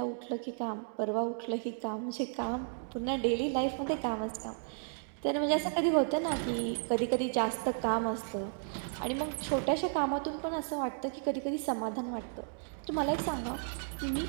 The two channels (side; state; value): left; silent; digital silence